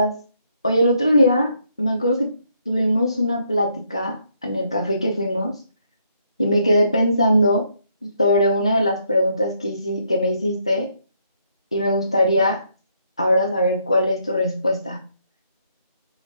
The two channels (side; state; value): both; inverted; correlation -0.73